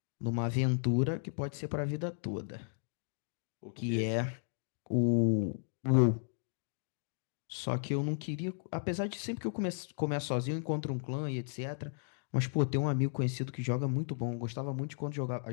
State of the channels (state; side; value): silent; right; digital silence